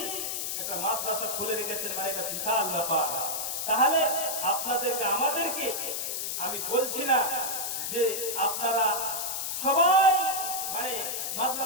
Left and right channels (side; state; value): left; noise; hiss, 2 dB below the sound